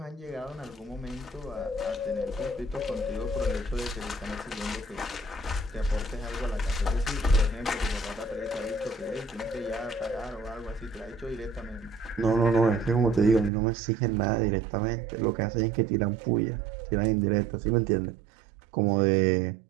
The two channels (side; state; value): left; drops out; at 13.5 s